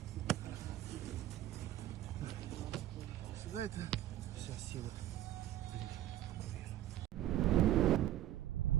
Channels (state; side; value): quieter; left; 13.2 dB